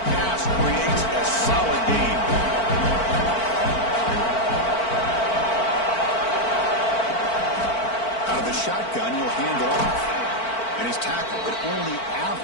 pass creates a solid gain. Out of the shotgun, he'll hand it off. And he's tackled, but only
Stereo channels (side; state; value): right; late; 4.5 ms